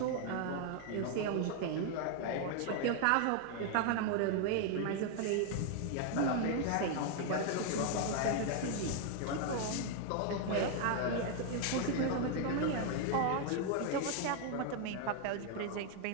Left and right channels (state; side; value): different; both; correlation 0.00